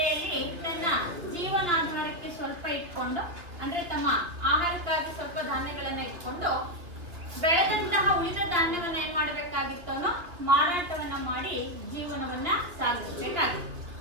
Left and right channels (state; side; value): late; left; 2.7 ms